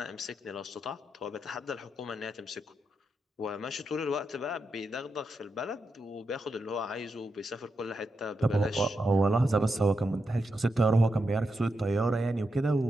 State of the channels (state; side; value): normal; both; correlation 0.86